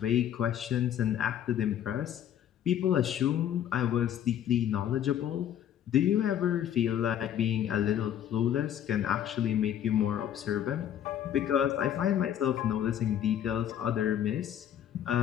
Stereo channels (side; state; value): right; quieter; 10.3 dB